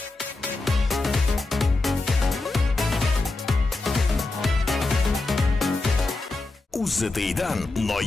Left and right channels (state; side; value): quieter; right; 3.2 dB